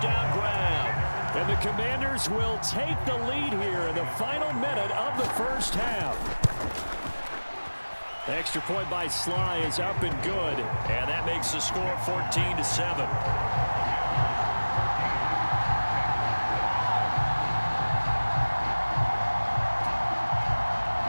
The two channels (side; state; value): both; inverted; correlation -1.00